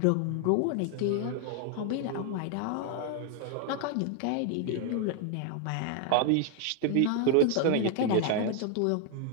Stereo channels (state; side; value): different; both; correlation 0.00